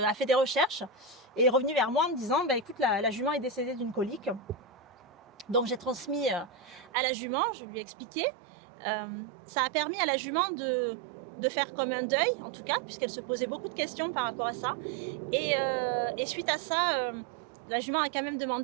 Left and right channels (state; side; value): drops out; left; at 6.9 s